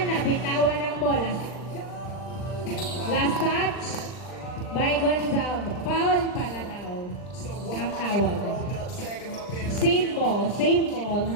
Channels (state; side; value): late; right; 39 ms